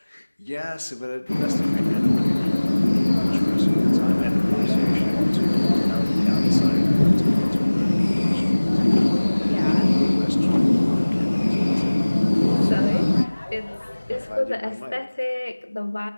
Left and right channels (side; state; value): both; inverted; correlation -1.00